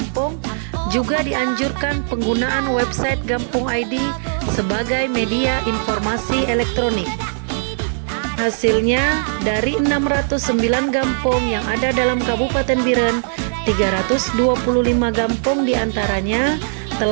juga dianjurkan penggunaan website Gampong ID sebagai media informasi elektronik. Hasilnya, dari 609 gampong yang ada dalam Kabupaten Biren, 325 gampong diantaranya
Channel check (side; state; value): left; silent; digital silence